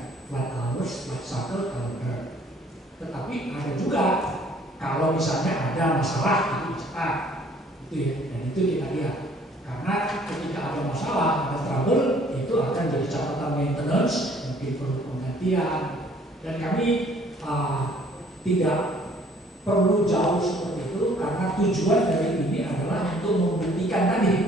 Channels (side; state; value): both; normal; correlation 0.58